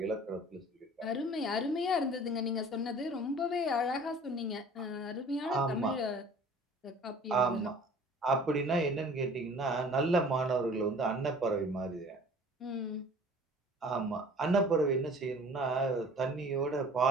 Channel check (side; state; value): both; normal; correlation 0.48